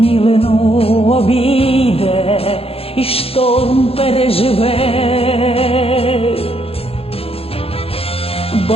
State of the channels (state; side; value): late; right; 0.28 ms